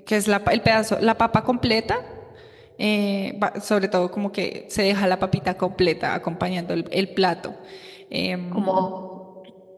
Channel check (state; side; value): identical; both; correlation 1.00